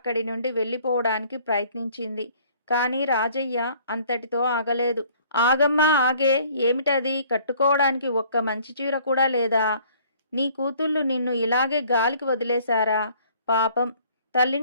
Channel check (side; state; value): both; inverted; correlation -0.57